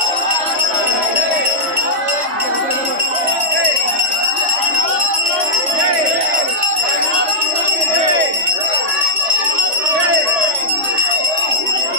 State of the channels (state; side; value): late; left; 3.0 ms